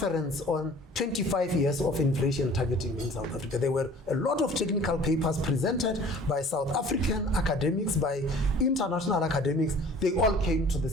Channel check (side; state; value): both; normal; correlation 0.48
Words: on 25 years of inflation targeting in South Africa. There were a lot of technical papers presented by South African academics, by international academics. They all came to the